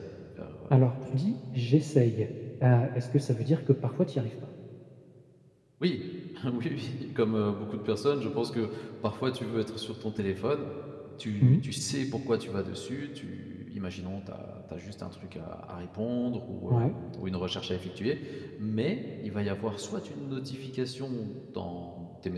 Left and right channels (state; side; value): identical; both; correlation 1.00